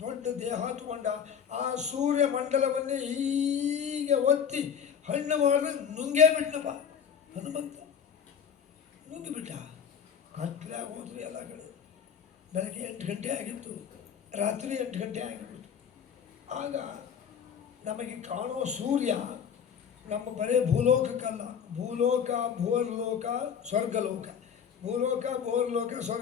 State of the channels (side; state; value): right; quieter; 7.7 dB